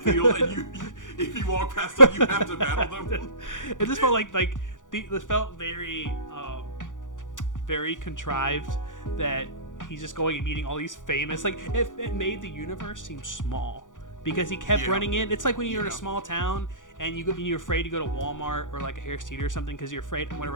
and if you walk past them, you have to battle them. It just felt this felt very, very contrived that he's just going and meeting all these famous. Like it made the universe seem small because he kept running in. It's like when you're in a small town and you're afraid to go to Walmart or like a Harris Teeter or something because you're afraid I'm going to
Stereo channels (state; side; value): late; right; 0.87 ms